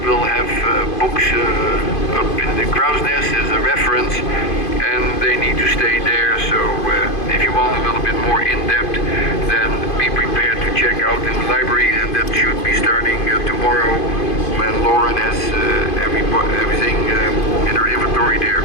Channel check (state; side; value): late; right; 2.5 ms